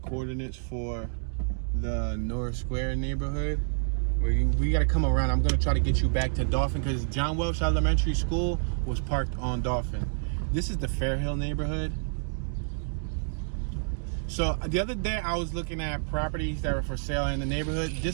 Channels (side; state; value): left; silent; digital silence